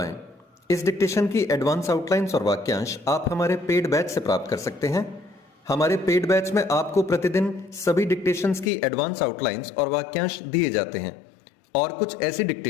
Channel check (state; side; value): drops out; right; at 8.7 s